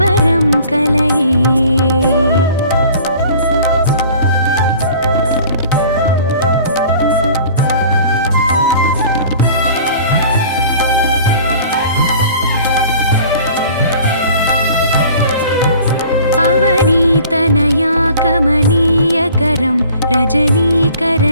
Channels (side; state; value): both; inverted; correlation -0.48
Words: कलये अवनीतनया कमनीयकरं